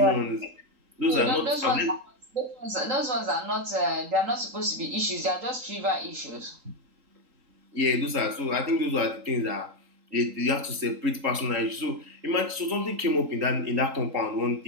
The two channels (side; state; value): left; late; 3.8 ms